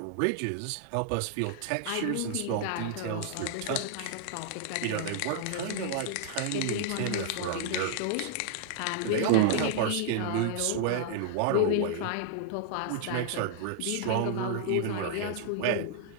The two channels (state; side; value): different; both; correlation -0.01